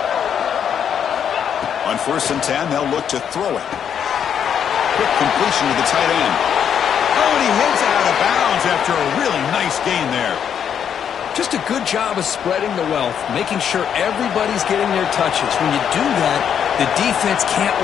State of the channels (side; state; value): right; quieter; 8.4 dB